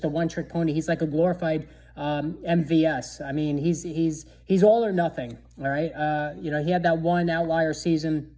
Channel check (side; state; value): both; identical; correlation 1.00